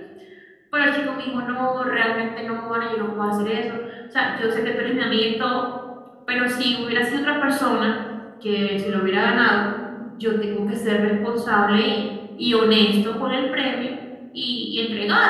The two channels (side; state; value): both; identical; correlation 1.00